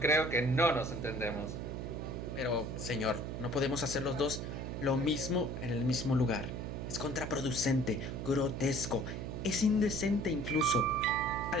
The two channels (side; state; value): right; noise; hum, 5 dB below the sound